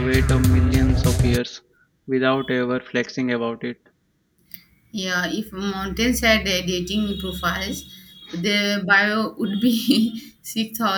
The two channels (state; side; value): identical; both; correlation 1.00